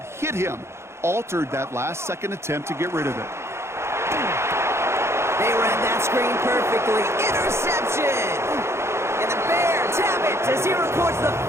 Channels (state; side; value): late; left; 0.13 ms